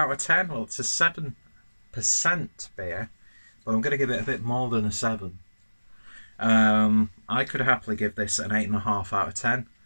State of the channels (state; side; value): inverted; both; correlation -1.00